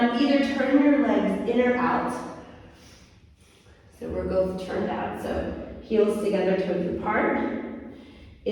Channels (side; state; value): both; identical; correlation 1.00